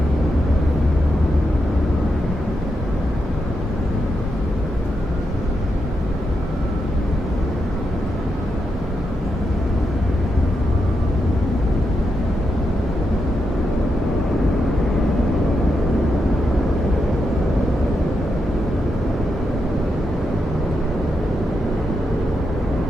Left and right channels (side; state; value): both; normal; correlation 0.84